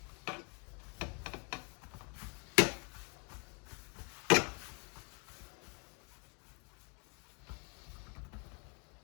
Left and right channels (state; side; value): quieter; right; 35.5 dB